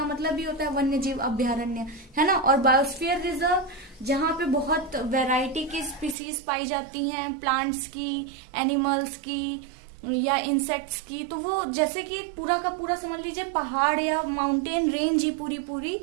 मतलब ये होता है वन्य जीव अभ्यारण्य, है ना। और बायोस्फीयर रिजर्व, जहाँ पे बहुत वैरायटी की स्पीसीज पाई जाती हैं, प्लांट्स की, एनिमल्स की या इंसेक्ट्स की, तो वो जैसे कि पूरा का पूरा समझ लीजिए पहाड़ या माउंटेन रेंज ही पूरी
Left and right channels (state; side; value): drops out; left; at 6.2 s